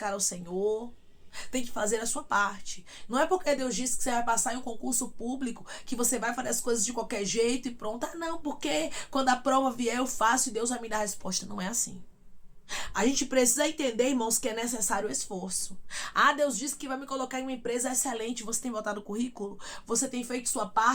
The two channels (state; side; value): identical; both; correlation 1.00